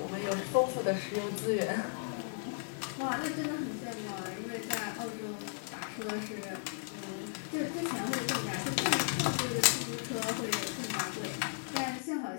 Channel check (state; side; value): silent; right; digital silence